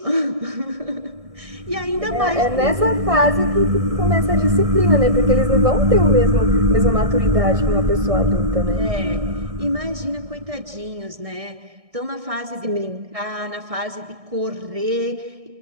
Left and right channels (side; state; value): left; late; 1.6 ms